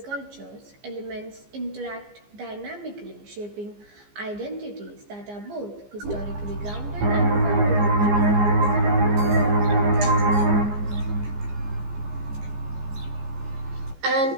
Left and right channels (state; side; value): late; left; 15 ms